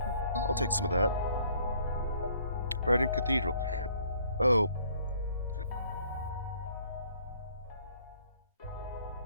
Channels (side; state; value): both; inverted; correlation -0.61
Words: I'll take some of that. Brighton Cathedral. Oh.